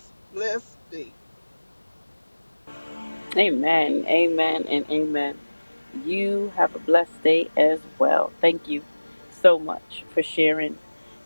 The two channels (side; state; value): both; inverted; correlation -1.00